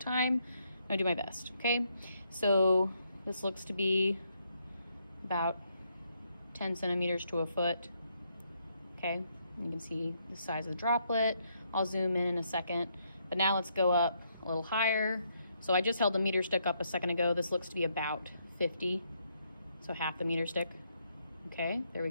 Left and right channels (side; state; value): both; inverted; correlation -0.75